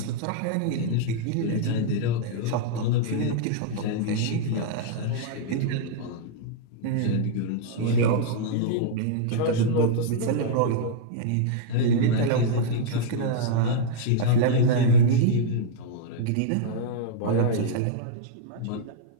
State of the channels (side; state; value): both; different; correlation -0.02